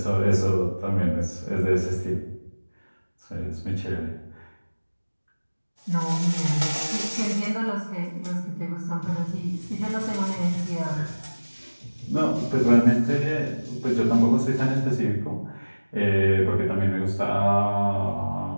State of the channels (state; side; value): inverted; both; correlation -1.00